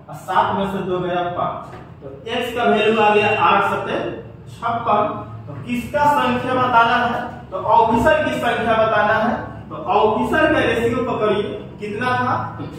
7 में से 2 गया 5। तो x का वैल्यू आ गया 8 7 56। तो किसका संख्या बताना है तो ऑफिसर की संख्या बताना है। तो ऑफिसर का रेशियो पकड़िए कितना था तो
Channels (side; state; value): both; identical; correlation 1.00